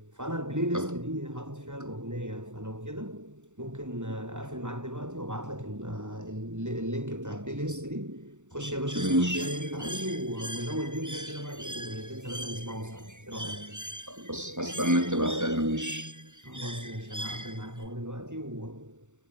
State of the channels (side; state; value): left; late; 0.84 ms